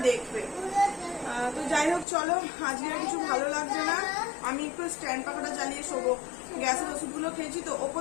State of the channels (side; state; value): right; drops out; at 2.1 s